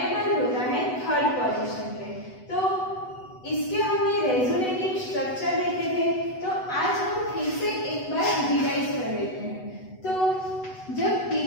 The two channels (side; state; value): right; late; 8.0 ms